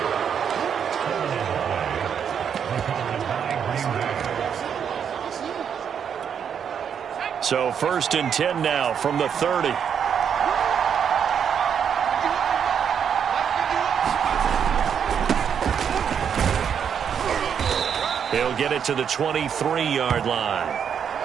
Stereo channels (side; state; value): left; quieter; 7.8 dB